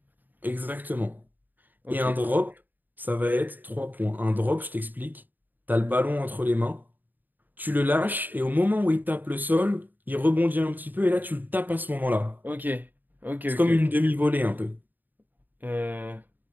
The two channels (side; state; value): left; late; 0.088 ms